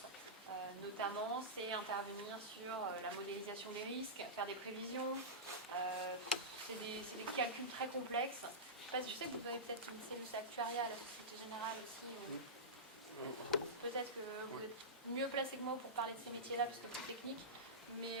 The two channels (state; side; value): normal; both; correlation -0.15